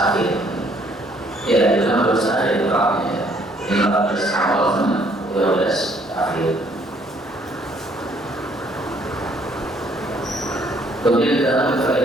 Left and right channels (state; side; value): normal; both; correlation 0.64